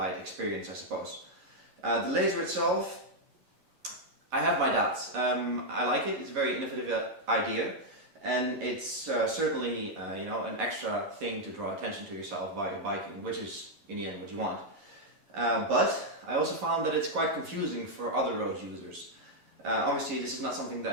experience, I suppose. The laser itself, I have my doubts. I like it. It's a very innovative idea. And it's certainly, you know, an extra thing to draw attention to yourself while you're biking, which is in the end what you want. But I also found that it's quite confusing for other road users. Obviously this is not something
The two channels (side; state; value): left; late; 11 ms